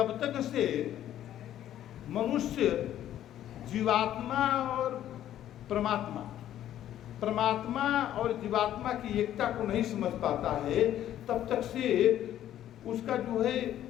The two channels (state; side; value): quieter; right; 11.8 dB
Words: तक से मनुष्य जीवात्मा और परमात्मा, परमात्मा और जीवात्मा की एकता को नहीं समझ पाता है, तब तक से उसका जो है